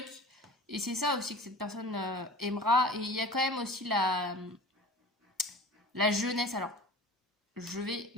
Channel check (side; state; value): both; normal; correlation 0.41